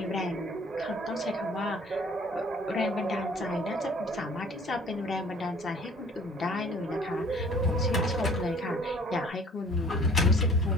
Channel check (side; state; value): both; normal; correlation 0.54